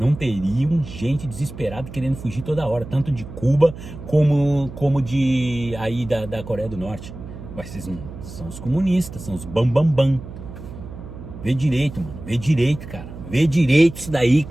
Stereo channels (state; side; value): noise; right; hum, 13 dB below the sound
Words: teriam gente desesperada querendo fugir toda hora. Tanto de Cuba como de aí da Coreia do Norte. Mas vocês não são os comunistas, são os bambambam. Vê direito, mano. Vê direito, cara. Vê direito isso daí,